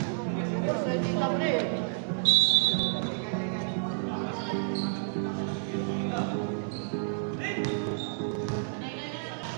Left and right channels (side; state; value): left; silent; digital silence